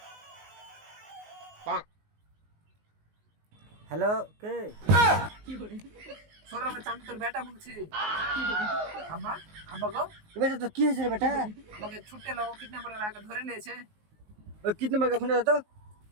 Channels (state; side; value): late; left; 19 ms